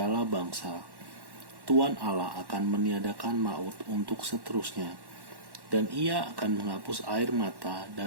bangsa. Tuhan Allah akan meniadakan maut untuk seterusnya, dan Ia akan menghapus air mata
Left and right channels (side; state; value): left; late; 1.1 ms